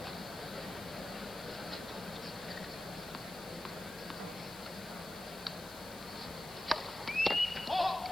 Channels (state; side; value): noise; left; hiss, 14 dB below the sound